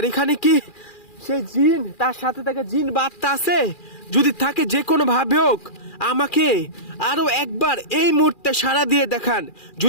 এখানে কি সেই জিন, তার সাথে থাকা জিন বা আত্মা আছে? যদি থাকে যে কোনো ভাবে হোক আমাকে আরো একবার এই মুহূর্তে সাড়া দিয়ে দেখান।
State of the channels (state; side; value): late; right; 2.4 ms